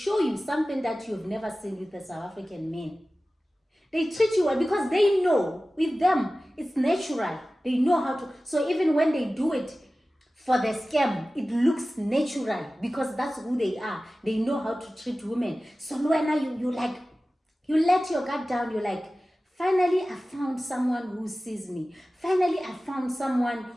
you something that you've never seen with the South African men. They treat you well because they know with them it's natural. They know how to. So even when they do it for the scam, it looks natural because that's who they are. They know how to treat women. So when you like, you let your guard down, you're like, finally I found someone who sees me. Finally I found someone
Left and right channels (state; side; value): normal; both; correlation 0.96